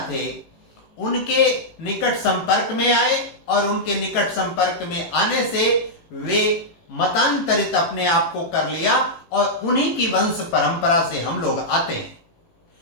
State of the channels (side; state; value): right; late; 18 ms